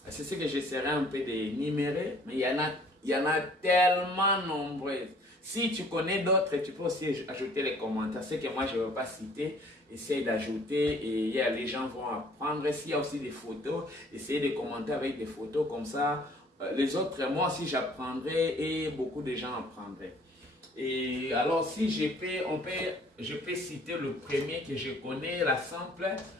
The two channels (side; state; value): both; normal; correlation 0.56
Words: C'est ce que j'essaierai un peu d'énumérer, mais il y en a tellement nombreuses. Si tu connais d'autres, tu peux aussi ajouter les commentaires. Ce que moi, je ne vais pas citer, essaye d'ajouter et les gens vont apprendre. S'il y a aussi des photos, essayez de commenter avec des photos comme ça. Les autres, moi aussi j'apprendrai et beaucoup de gens apprendraient. Et alors si je peux citer le premier que je connais, la simple,